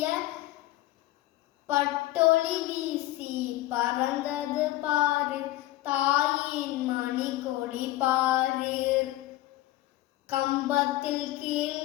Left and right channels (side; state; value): right; quieter; 16.4 dB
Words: பட்டொளி வீசி பறந்தது பாரு தாயின் மணி கொடி பாரு கம்பத்தில் கீழ்